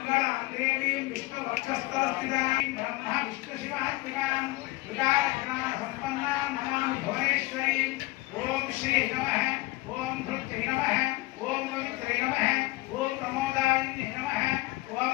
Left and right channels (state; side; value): quieter; right; 20.7 dB